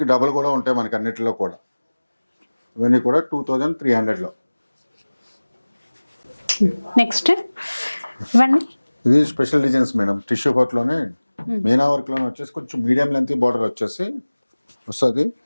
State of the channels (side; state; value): both; inverted; correlation -1.00